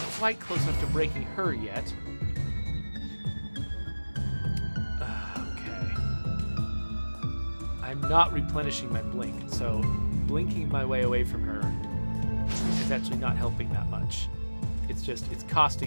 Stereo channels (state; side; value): inverted; both; correlation -1.00